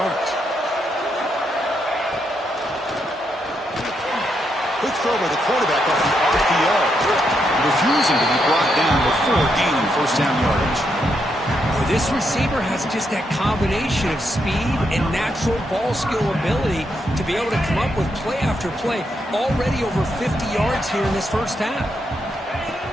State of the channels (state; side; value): normal; both; correlation 0.80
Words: Quick throw by the quarterback off the RPO. Refusing to be brought down before gaining first down yardage. Well, this receiver has just that combination of speed and natural ball skill ability to be able to come up with play after play. Already over 50 yards here in this first half.